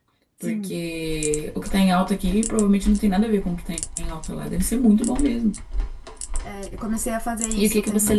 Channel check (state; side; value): identical; both; correlation 1.00